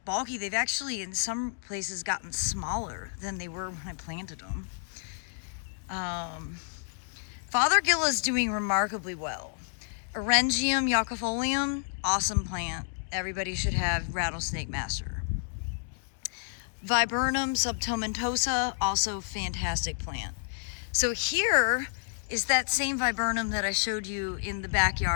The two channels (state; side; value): silent; right; digital silence